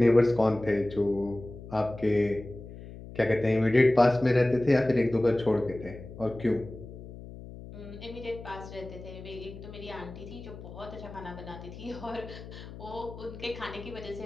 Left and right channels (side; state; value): left; noise; hum, 14 dB below the sound